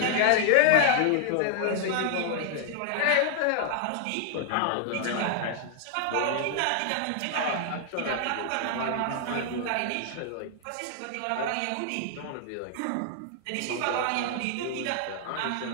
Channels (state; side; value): different; both; correlation 0.00